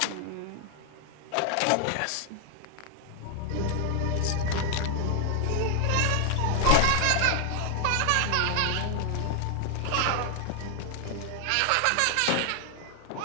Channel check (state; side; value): different; both; correlation 0.00